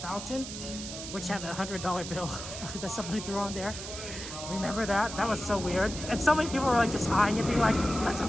fountain, which had a $100 bill that somebody threw on there. Remember that? That was so weird. And so many people were like just eyeing it, being like, let's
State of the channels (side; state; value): right; noise; hiss, 9 dB below the sound